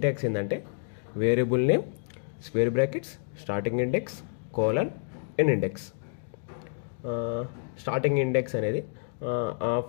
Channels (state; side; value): silent; right; digital silence